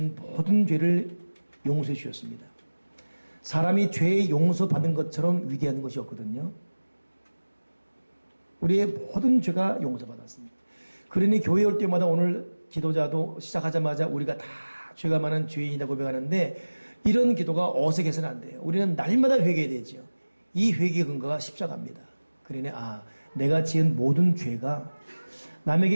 모든 죄를 용서해 주셨습니다. 사람이 죄의 용서받는 것처럼 위대한 것이 없거든요. 우리의 모든 죄가 용서받았습니다. 그러니 교회 올 때마다 오늘 기도자도 시작하자마자 우리가 다 죄가 많은 죄인이다 고백하는데 이런 기도가 어색해서는 안 돼요. 우리는 날마다 회개되죠. 이 회개 근거가 십자가입니다. 그러니 내가 지은 모든 죄가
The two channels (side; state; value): both; inverted; correlation -1.00